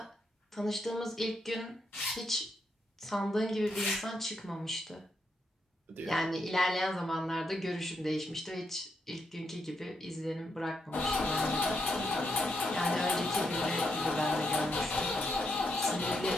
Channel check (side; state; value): both; normal; correlation 0.81